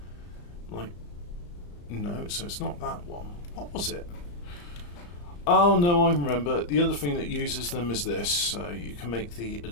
Like, no, so it's not that one. What was it? Oh no, I remember. The other thing that uses them is this. You can make the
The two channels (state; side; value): late; right; 34 ms